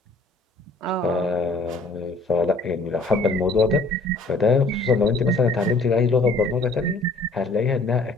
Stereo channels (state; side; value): quieter; right; 3.1 dB